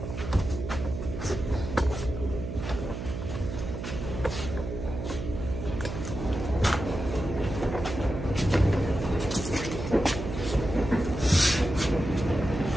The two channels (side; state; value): right; noise; hum, 6 dB below the sound